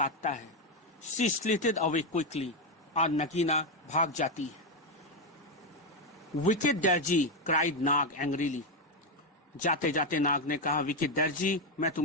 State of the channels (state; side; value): normal; both; correlation 0.07